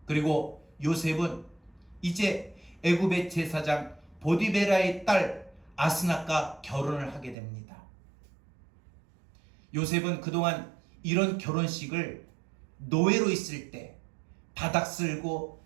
그리고 요셉은 이제 애굽의 제사장 보디베라의 딸 아스낫과 결혼을 하게 됩니다. 요셉은 그동안 이런 결혼식을 노예로 있을 때 바닥 쓸고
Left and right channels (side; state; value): left; drops out; at 7.4 s